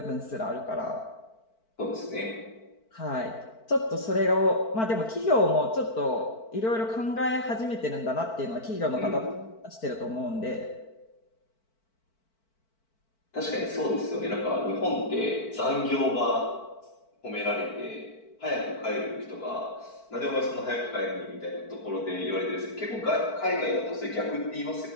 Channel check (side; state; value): right; late; 4.5 ms